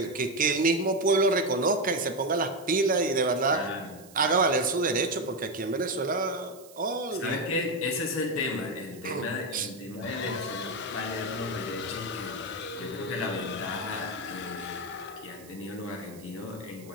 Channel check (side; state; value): right; noise; hiss, 22 dB below the sound